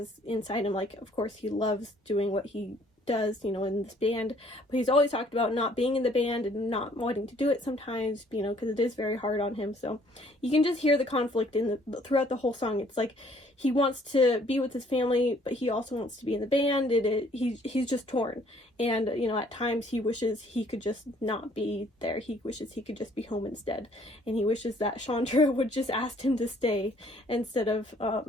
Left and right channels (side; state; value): both; normal; correlation 0.61